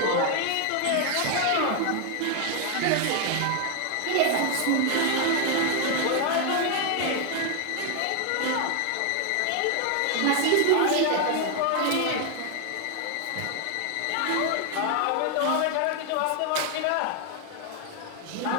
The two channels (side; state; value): both; different; correlation 0.01